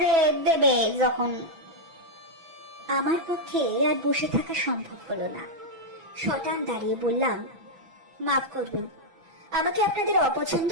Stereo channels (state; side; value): late; left; 6.0 ms